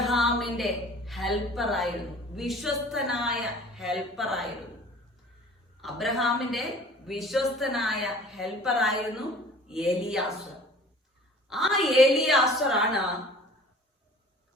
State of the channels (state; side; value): normal; both; correlation 0.47